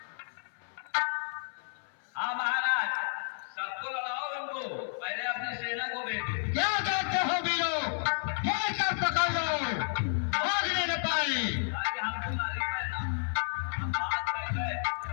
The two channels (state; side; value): silent; right; 57 dB below the other